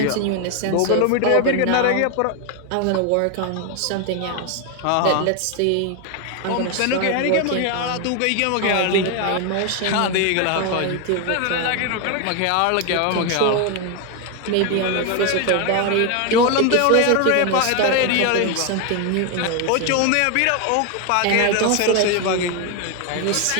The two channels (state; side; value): different; both; correlation 0.01